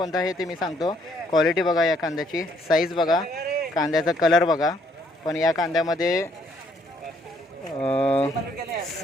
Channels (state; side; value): normal; both; correlation 0.67